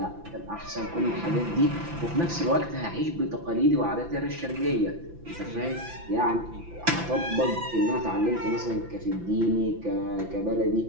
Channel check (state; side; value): late; left; 5.9 ms